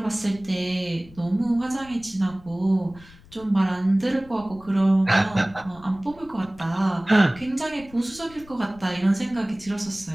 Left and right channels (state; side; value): noise; left; rumble, 23 dB below the sound